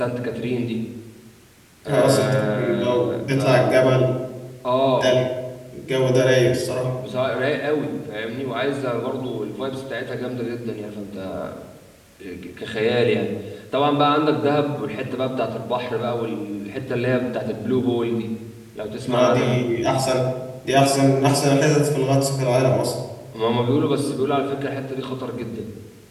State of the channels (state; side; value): identical; both; correlation 1.00